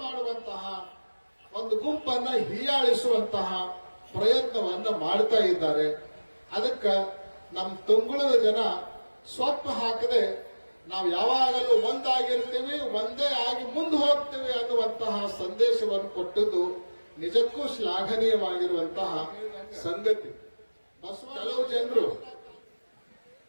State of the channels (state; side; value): inverted; both; correlation -1.00